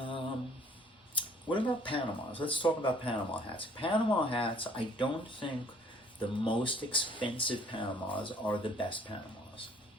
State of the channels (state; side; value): normal; both; correlation 0.57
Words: about Panamas? Let's talk about Panama hats. Panama hats, I don't think the most expensive Panamas are the best Panamas.